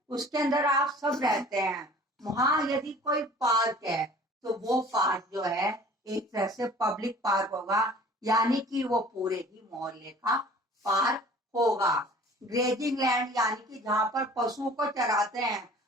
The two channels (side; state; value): both; normal; correlation 0.48